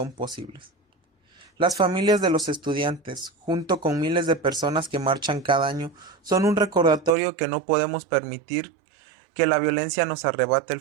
posibles. Las familias de los estudiantes, junto con miles de personas que marchan cada año, son un recordatorio que no podemos permitir que la violencia nos arrebate el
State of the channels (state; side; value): drops out; left; at 7.2 s